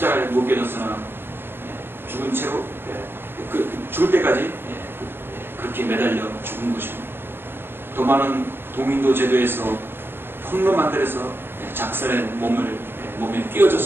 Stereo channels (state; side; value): late; left; 0.10 ms